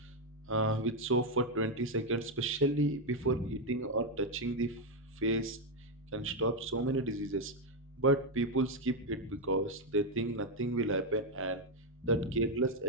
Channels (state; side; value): normal; both; correlation 0.04